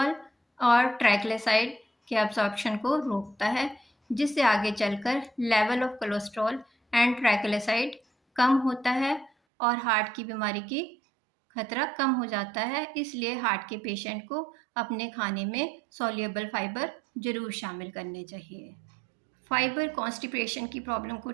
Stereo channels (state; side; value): drops out; left; at 9.3 s